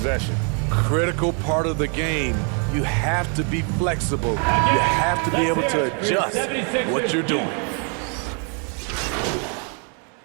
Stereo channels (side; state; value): left; quieter; 38.8 dB